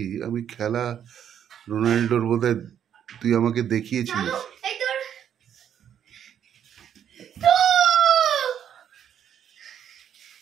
আমি খেলা রোনাল্ডোর বোধহয় তুই আমাকে দেখিয়েছিলিস।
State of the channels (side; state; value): left; quieter; 9.3 dB